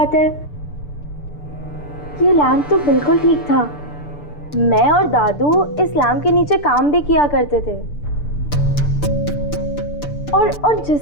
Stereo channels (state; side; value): late; right; 6.8 ms